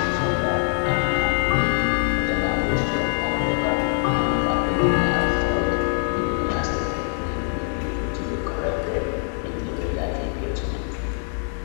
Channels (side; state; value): right; silent; 59 dB below the other